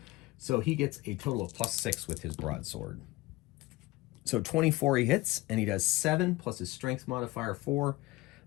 So he gets a total of +6 with his broadsword. So 24 he hits, and he does 7 plus his strength modifier 4.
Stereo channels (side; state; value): right; quieter; 20.0 dB